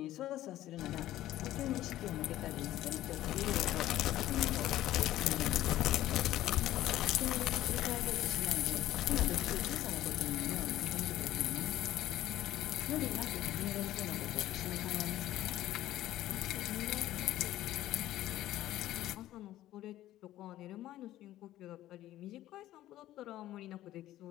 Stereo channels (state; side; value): quieter; right; 14.2 dB